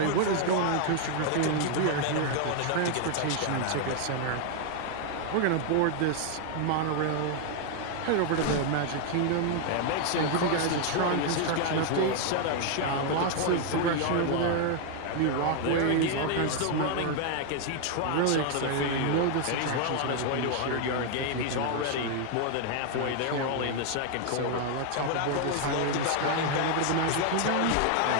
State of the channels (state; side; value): different; both; correlation 0.00